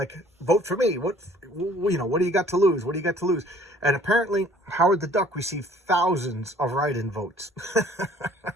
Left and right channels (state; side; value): normal; both; correlation 0.56